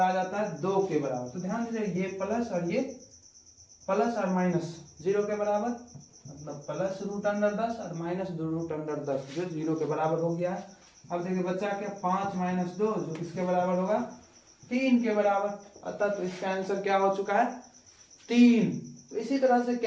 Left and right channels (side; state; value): both; identical; correlation 1.00